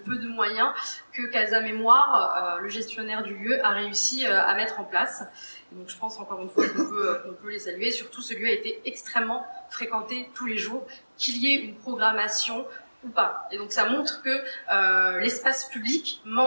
de moyens que Casa Mémoire, le gestionnaire du lieu, a réussi à mettre en place. Et donc je pense encore une fois qu'on peut les saluer. Surtout, ce lieu a été extrêmement fréquenté tous les jours, qu'il y ait une programmation ou pas. Et donc ça montre que l'espace public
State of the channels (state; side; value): inverted; both; correlation -1.00